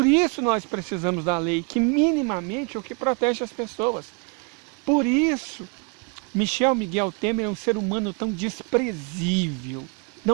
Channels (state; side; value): quieter; left; 35.6 dB